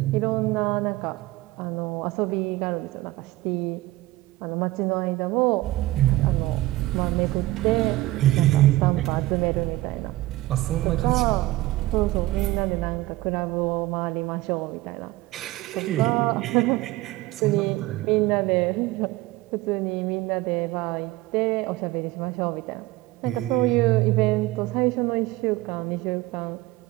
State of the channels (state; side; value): quieter; left; 18.1 dB